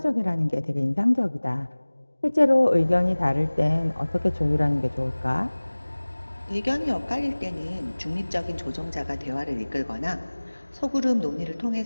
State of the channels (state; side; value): inverted; both; correlation -1.00